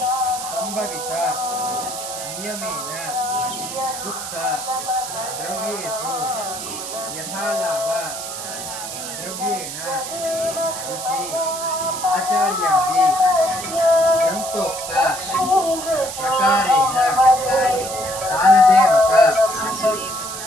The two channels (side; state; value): right; noise; hiss, 8 dB below the sound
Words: संभवित नियमेन उक्त द्रव्येषु यथालाभ द्रव्येण ऋषि आचार्यादि ग्रंथोक्त प्रकारेण दानदेवक